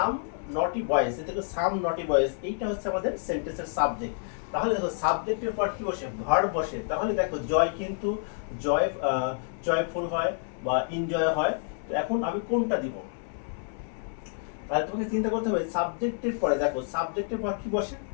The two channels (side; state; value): right; silent; 59 dB below the other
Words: নটি বয়েজ, দেখো সাম নটি বয়েজ, এইটা হচ্ছে আমাদের সেন্টেন্সের সাবজেক্ট। তাহলে দেখো সাবজেক্টের পর কি বসে, ভার্ব বসে। তাহলে দেখো জয় কিন্তু জয়ফুল হয় বা এনজয় হয়। তো এখন আমি কোনটা দিব, তাহলে তোমাকে চিন্তা করতে হবে সাবজেক্টের পরে, দেখো সাবজেক্টের পর কি বসে,